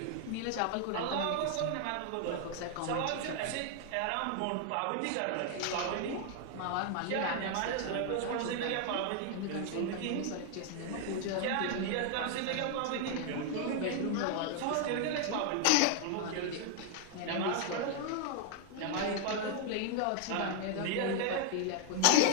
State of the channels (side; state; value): both; different; correlation 0.00